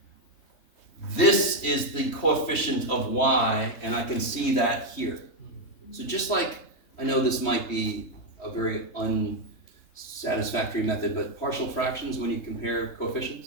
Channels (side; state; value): right; late; 3.3 ms